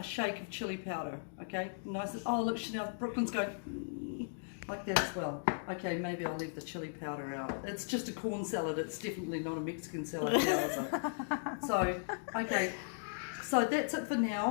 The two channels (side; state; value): right; silent; digital silence